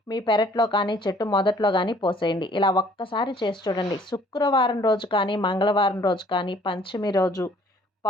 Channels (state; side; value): normal; both; correlation 0.58